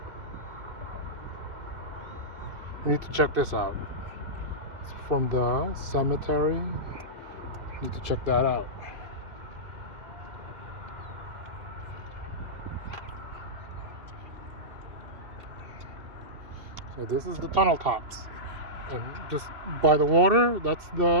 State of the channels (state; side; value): late; left; 2.7 ms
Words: We need to check this out. It's from the cemetery. Need to check that out. So this is the tunnel tops, and just by the water, that's